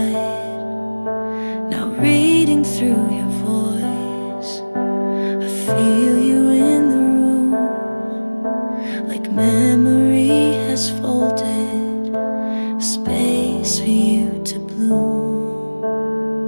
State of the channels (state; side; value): inverted; both; correlation -1.00